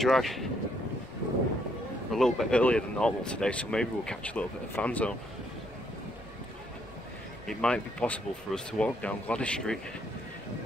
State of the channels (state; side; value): normal; both; correlation 0.71